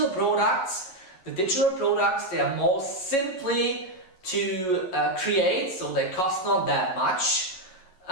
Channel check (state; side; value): late; right; 11 ms